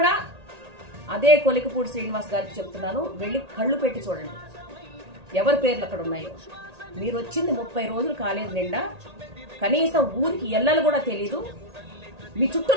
అదే కొలికపూడి శ్రీనివాస్ గారికి చెప్తున్నాను, వెళ్ళి కళ్ళు పెట్టి చూడండి ఎవరి పేర్లు అక్కడ ఉన్నాయో. మీరు వచ్చింది 30 రోజులు కాలేదు నిండా, కనీసం ఊరికి ఎల్లలు కూడా తెలీదు. మీ చుట్టూ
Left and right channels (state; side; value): late; left; 1.8 ms